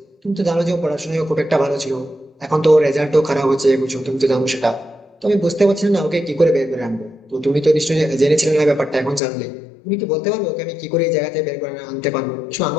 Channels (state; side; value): drops out; right; at 9.2 s